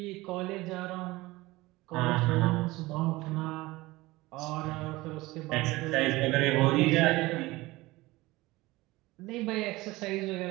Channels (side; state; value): left; quieter; 20.1 dB